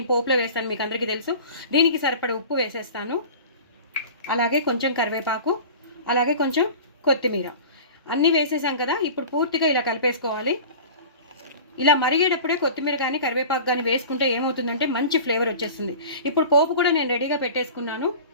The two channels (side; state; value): both; inverted; correlation -0.38